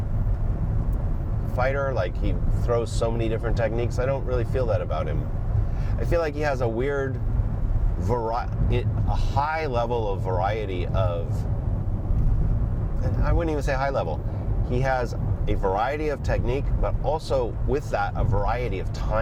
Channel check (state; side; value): identical; both; correlation 1.00